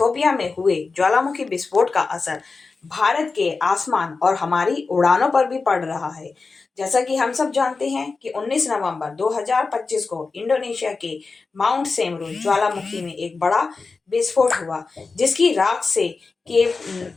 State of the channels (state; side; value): quieter; right; 4.3 dB